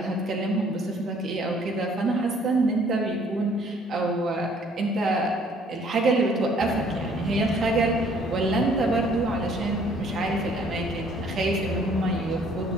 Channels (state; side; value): normal; both; correlation 0.60